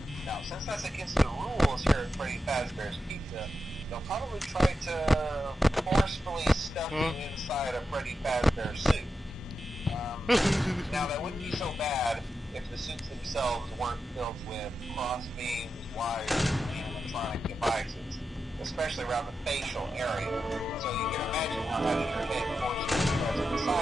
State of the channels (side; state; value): both; normal; correlation 0.89